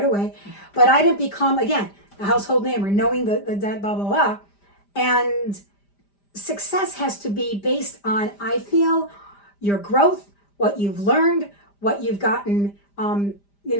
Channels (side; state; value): right; late; 5.0 ms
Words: away. But I didn't become, again, a household name or knowing the blah, blah, blah. And success has to be based on, I feel, your growth, what you've learned, what you've gotten,